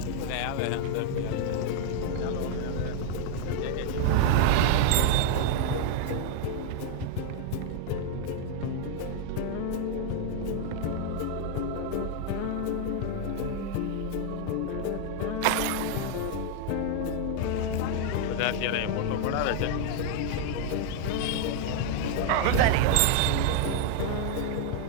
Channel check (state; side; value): different; both; correlation 0.00